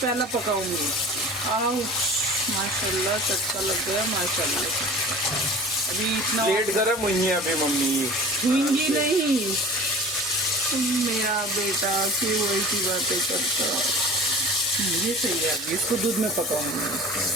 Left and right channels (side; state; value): both; normal; correlation 0.40